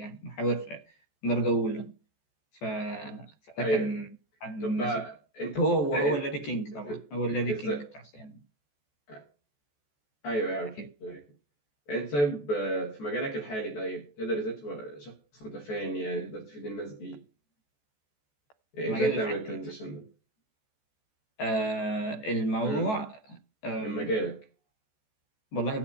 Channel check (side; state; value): right; late; 14 ms